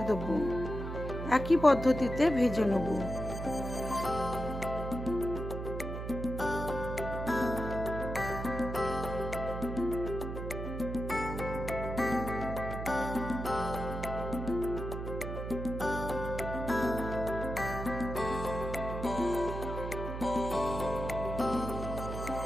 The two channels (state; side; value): noise; right; hum, 6 dB below the sound